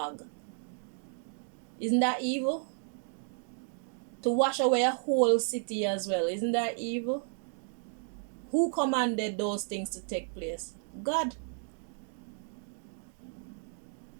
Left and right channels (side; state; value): left; silent; 56 dB below the other